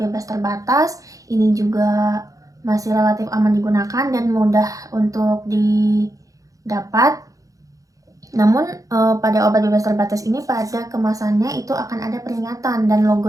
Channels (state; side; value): late; left; 0.16 ms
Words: terbatas. Ini juga masih relatif aman digunakan dan mudah untuk didapat. Namun pada obat bebas terbatas ini, pada kemasannya itu akan ada peringatan, dan logo